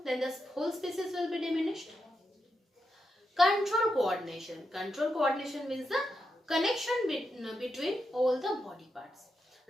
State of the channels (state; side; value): normal; both; correlation 0.85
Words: then the whole species will be diminished. Control coordination. Control coordination means the connection between all the body parts,